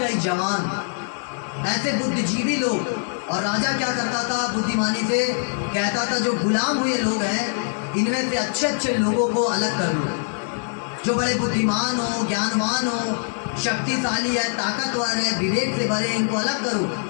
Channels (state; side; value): silent; right; digital silence